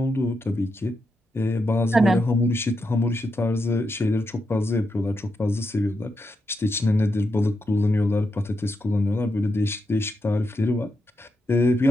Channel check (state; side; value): normal; both; correlation 0.85